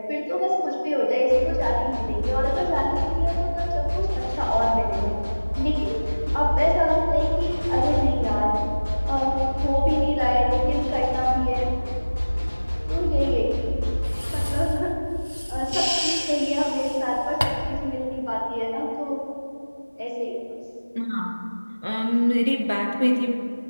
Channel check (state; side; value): inverted; both; correlation -1.00